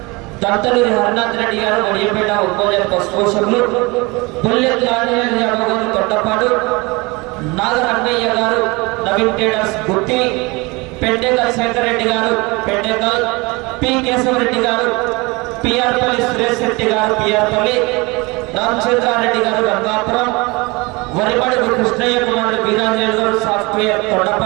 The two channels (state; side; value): quieter; left; 25.3 dB